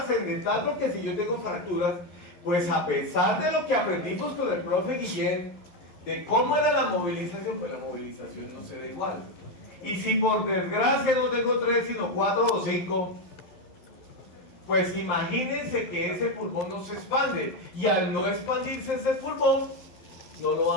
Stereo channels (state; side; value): late; right; 11 ms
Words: porque si yo tengo fracturas, pues a pesar de lo que aprendimos con el profe Guillén, de cómo era la movilización, pues la movilización no se da igual. Y si por desgracia no tengo 3, sino 4 o 5, pues imagínense que ese pulmón no se expande. Y al no expandirse ese pulmón, no lo